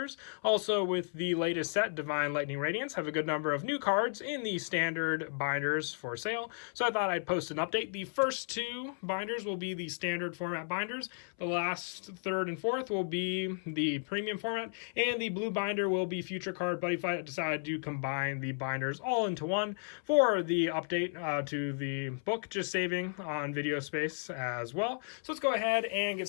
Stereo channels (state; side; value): silent; right; 55 dB below the other